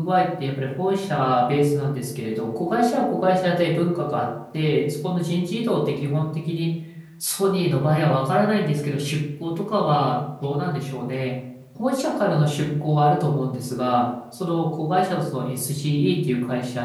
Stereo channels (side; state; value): both; identical; correlation 1.00